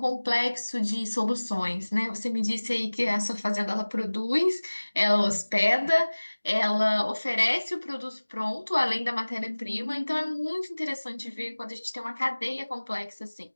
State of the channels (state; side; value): inverted; both; correlation -1.00